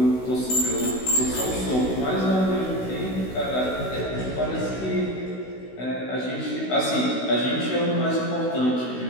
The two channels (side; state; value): right; late; 16 ms